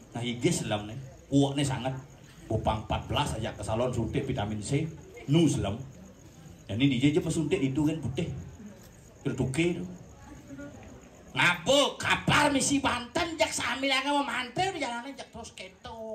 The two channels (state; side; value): identical; both; correlation 1.00